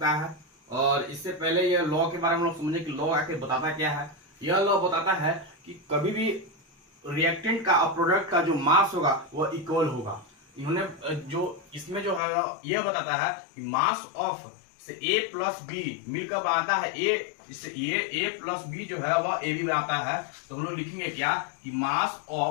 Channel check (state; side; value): drops out; right; at 12.2 s